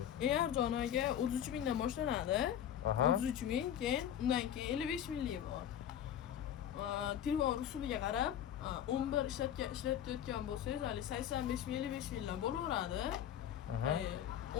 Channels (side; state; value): right; quieter; 10.2 dB